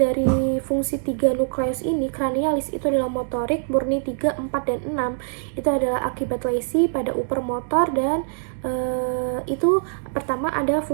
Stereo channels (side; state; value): left; silent; digital silence